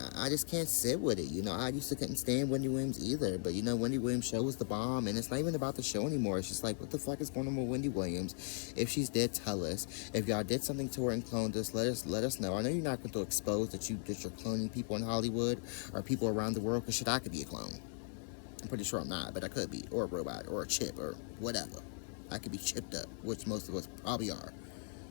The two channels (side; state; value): right; silent; 53 dB below the other